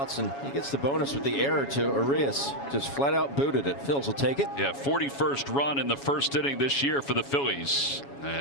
and he gets the bonus with the error to Urias. Just flat out booted it. Phils will take it. Yeah, 41st run in the first inning this year for the Phillies.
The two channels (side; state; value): right; late; 7.2 ms